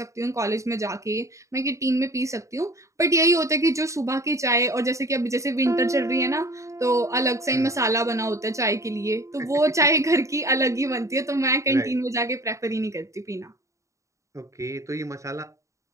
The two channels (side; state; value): left; late; 0.15 ms